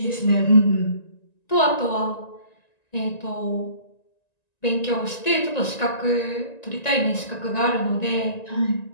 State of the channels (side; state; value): right; late; 1.9 ms